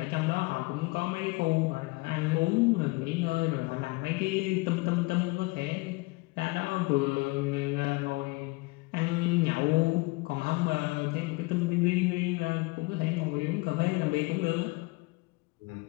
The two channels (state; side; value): quieter; right; 24.7 dB